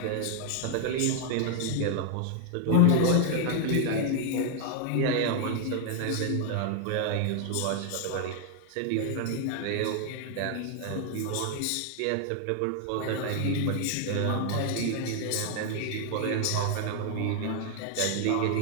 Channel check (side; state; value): both; different; correlation 0.00